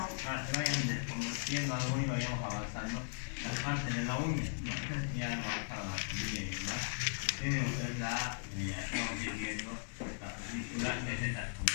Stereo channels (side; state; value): right; silent; digital silence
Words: para que vayan desconociendo algo y vayamos avanzando las partes de la uña. No sé si ya hemos avanzado la familia y demás. Tienen ustedes estamos viendo la película, que es esta